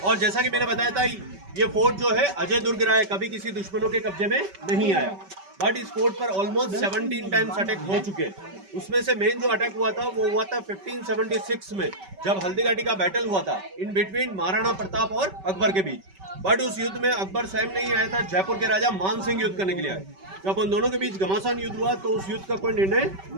और जैसा कि मैंने बताया था, ये फोर्ट जो है अजय दुर्ग रहा है, कभी किसी दुश्मनों के कब्जे में नहीं आया। बट इस फोर्ट पर ऑलमोस्ट 17 टाइम्स अटैक हो चुके हैं। उसमें से मेन जो अटैक हुआ था वो हुआ था 1576 में, जब हल्दीघाटी का बैटल हुआ था इन बिटवीन महाराणा प्रताप और अकबर के बीच। बट उस युद्ध में अकबर स्वयं नहीं आया था, जयपुर के राजा मान सिंह युद्ध करने के लिए आए। जब उन दोनों के बीच घमासान युद्ध हुआ तो उस युद्ध का कोई निर्णय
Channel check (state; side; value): late; left; 5.2 ms